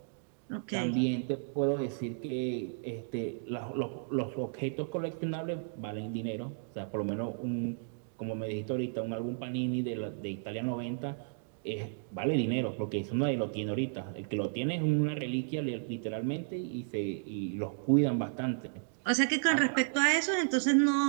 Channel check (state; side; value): silent; left; digital silence